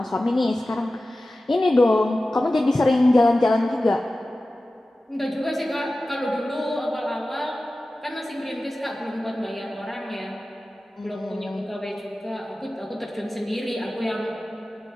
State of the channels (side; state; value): both; normal; correlation 0.95